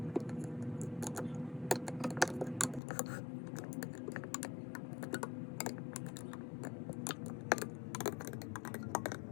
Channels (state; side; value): drops out; right; at 2.8 s